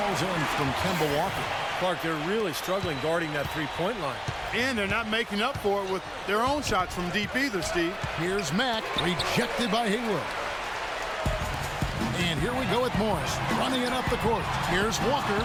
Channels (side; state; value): both; identical; correlation 1.00